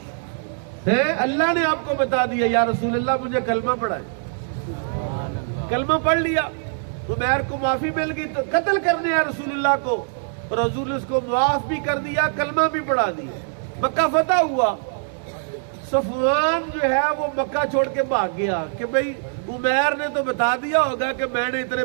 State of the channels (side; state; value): left; silent; digital silence